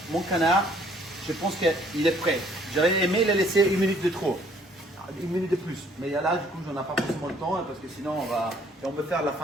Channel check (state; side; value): normal; both; correlation 0.61